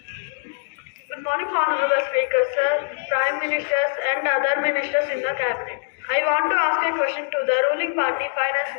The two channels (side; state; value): right; silent; digital silence